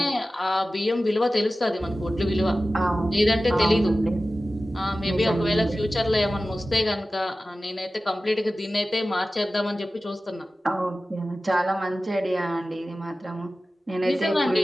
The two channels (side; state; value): both; normal; correlation 0.95